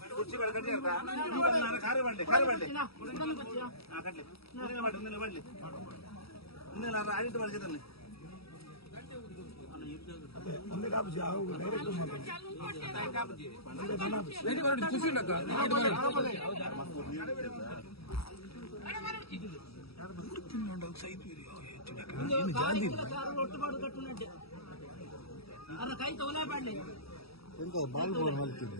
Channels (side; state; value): right; late; 0.76 ms